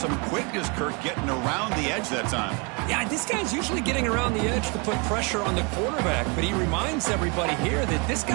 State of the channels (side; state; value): left; quieter; 31.0 dB